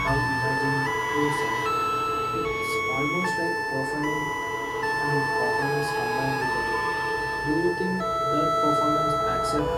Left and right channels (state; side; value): identical; both; correlation 1.00